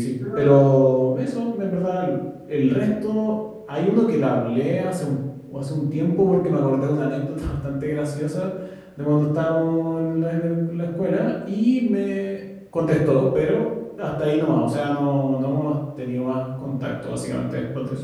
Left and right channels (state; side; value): identical; both; correlation 1.00